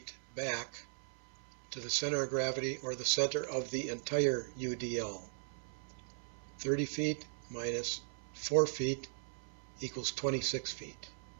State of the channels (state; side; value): silent; left; 52 dB below the other